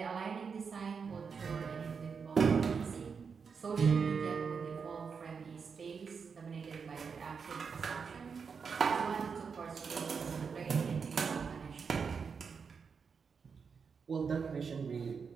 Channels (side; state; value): left; quieter; 5.8 dB